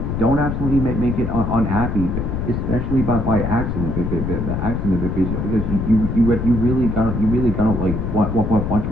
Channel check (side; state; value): left; noise; rumble, 2 dB below the sound